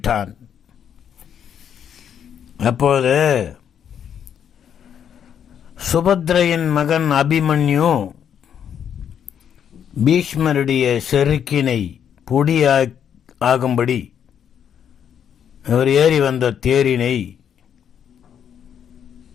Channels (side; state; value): right; quieter; 8.6 dB